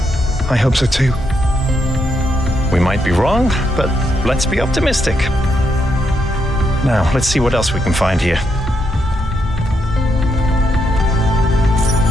I hope so too. We might be wrong, but let's be optimistic. Now, let's see what else we can find here.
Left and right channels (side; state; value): both; normal; correlation 0.79